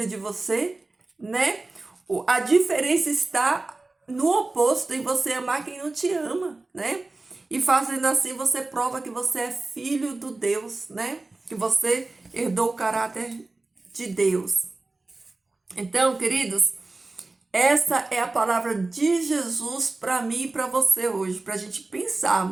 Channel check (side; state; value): left; quieter; 3.3 dB